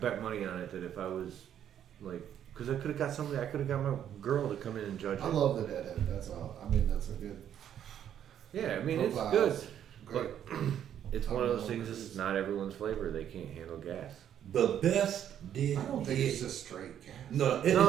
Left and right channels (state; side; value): quieter; left; 9.9 dB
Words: money on it that if I was like, because I could have got somebody, I could have got my girl to come in and judge it. I love the deadhead. That's all. I mean, that's a good. Yeah, I mean it's profile. good, Great. but it's one of those things. This is not everyone's flavor. They can't handle gas. The best did. I don't think it's just straight gas. No,